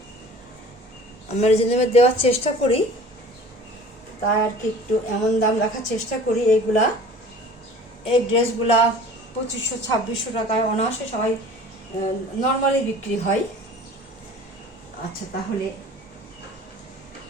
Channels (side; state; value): both; normal; correlation 0.44